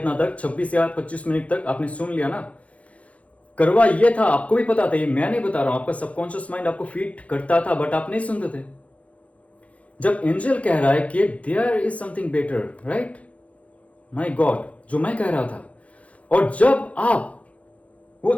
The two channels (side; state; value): right; late; 0.065 ms